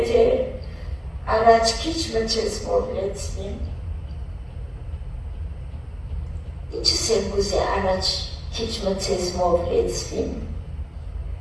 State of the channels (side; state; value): both; identical; correlation 1.00